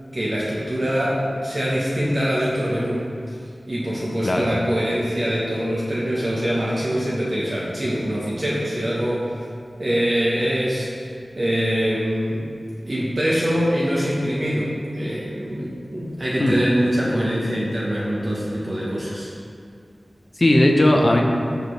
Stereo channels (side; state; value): both; normal; correlation 0.97